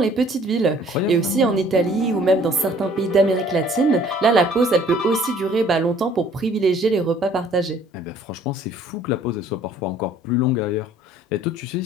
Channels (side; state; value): both; normal; correlation 0.56